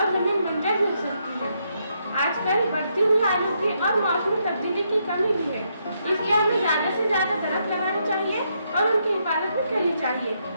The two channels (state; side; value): inverted; both; correlation -0.77